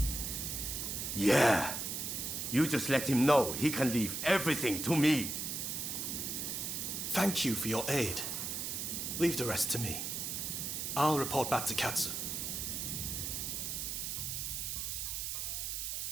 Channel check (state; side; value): noise; right; hiss, 3 dB below the sound